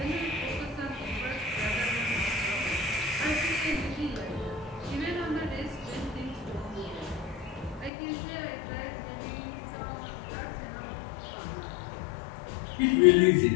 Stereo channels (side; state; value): right; drops out; at 7.9 s